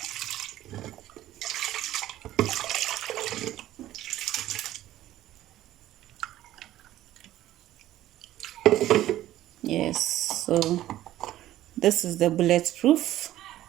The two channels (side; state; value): left; quieter; 14.0 dB